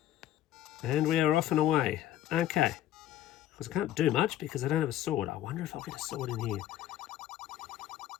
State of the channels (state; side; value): quieter; right; 12.5 dB